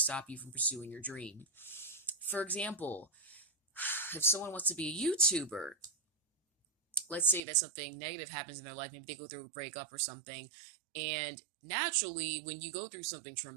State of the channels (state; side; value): drops out; left; at 7.4 s